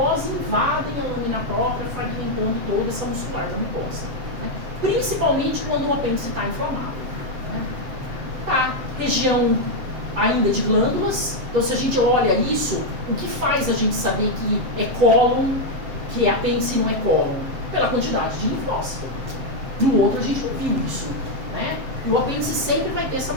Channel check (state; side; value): late; left; 7.5 ms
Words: invadem a lâmina própria, fragmentando toda essa muscular da mucosa, né? Principalmente quando o apêndice está inflamado, né? Tá, região ainda de glândulas. Então, se a gente olha isso, o que faz a gente saber que é cólon, que é apêndice e não é cólon? Pela quantidade de linfócito. No outro, a gente não viu isso, né? E o apêndice sempre vai ter essa